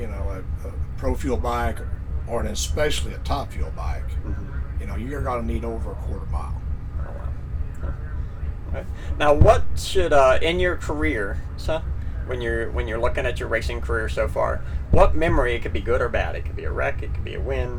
pro fuel bike or especially a top fuel bike, you're gonna need over a quarter mile. Oh, wow. Okay. Now, what should in your career, when you're looking at your racing career so far, what memory, it could be good or bad, it could be a wreck, it could be a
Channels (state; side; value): identical; both; correlation 1.00